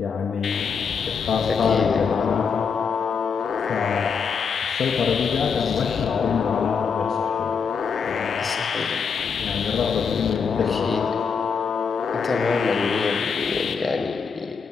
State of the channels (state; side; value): quieter; right; 5.9 dB